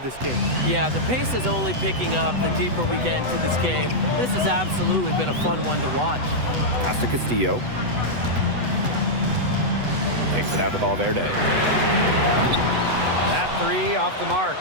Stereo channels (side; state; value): left; late; 8.0 ms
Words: this game. Yeah, the pace is only picking up the deeper we get into this game. This has absolutely been a fun one to watch. Pass to Castillo. Kicks it out to Valverde. That three off the mark.